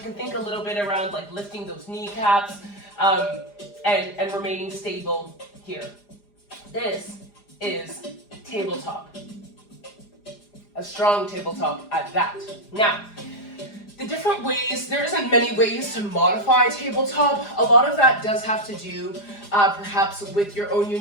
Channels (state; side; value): late; right; 4.9 ms